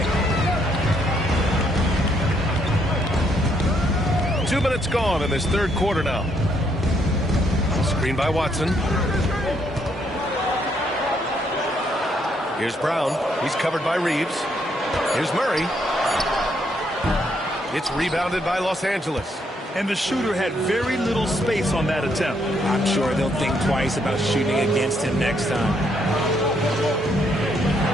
2 minutes gone in this third quarter now. Screen by Watson. Here's Brown. He's covered by Reeves. Here's Murray. It's rebounded by Los Angeles. And the shooter had very little space on that attempt. I'm sure they'll think twice about shooting against him next time.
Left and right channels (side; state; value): both; normal; correlation 0.73